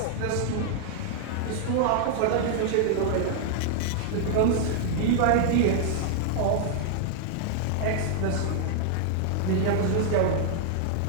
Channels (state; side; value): different; both; correlation -0.01